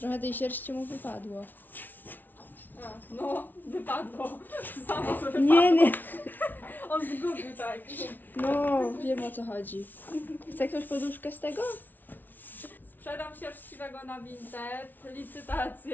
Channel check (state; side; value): late; right; 0.086 ms